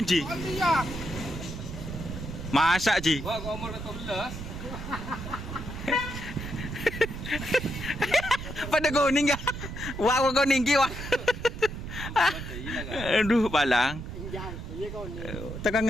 Ji? Masak Ji. Pada kuning ya. Wah kuning ki wah. Aduh balang. Tekan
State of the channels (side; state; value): right; noise; rumble, 8 dB below the sound